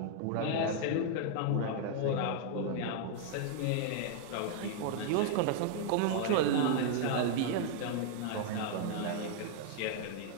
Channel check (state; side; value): different; both; correlation -0.01